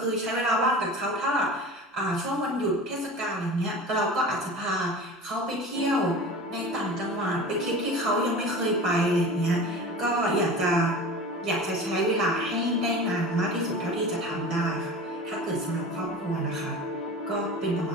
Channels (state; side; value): normal; both; correlation 0.35